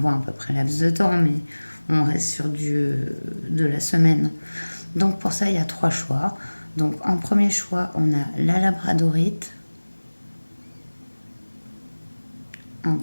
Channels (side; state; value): both; inverted; correlation -1.00